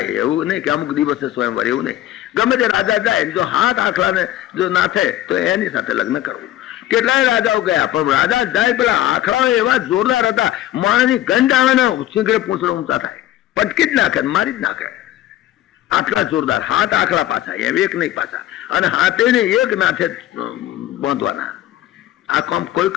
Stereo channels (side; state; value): right; quieter; 13.5 dB